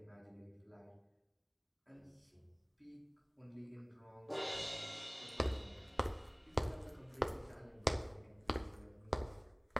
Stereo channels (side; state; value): both; identical; correlation 1.00